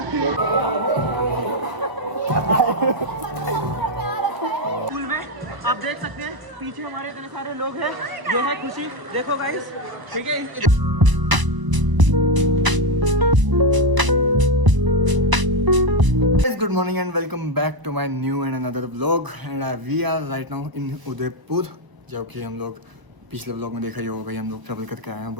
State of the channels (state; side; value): late; left; 1.0 ms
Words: स्कूल में आप देख सकते हैं पीछे हमारे इतने सारे लोग हैं। ये है खुशी, देखो गाइस, ठीक है। Good morning and welcome back to my new and another vlog and we are right now in Udaipur. जो कि हम लोग पिछले व्लॉग में देखा ही होगा भाई, हम लोग ट्रैवल करके आए हैं